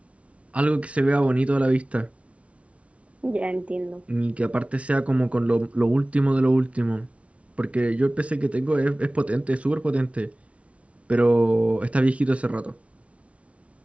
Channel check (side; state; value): left; late; 0.063 ms